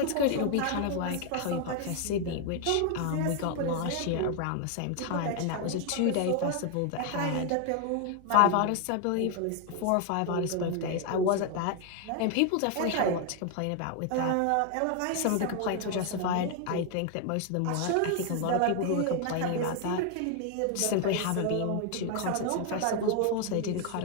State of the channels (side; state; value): both; different; correlation 0.00